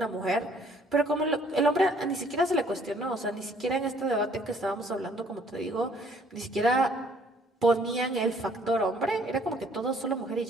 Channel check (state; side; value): normal; both; correlation 0.60